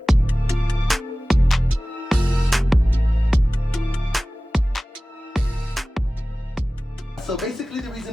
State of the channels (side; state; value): both; normal; correlation 0.97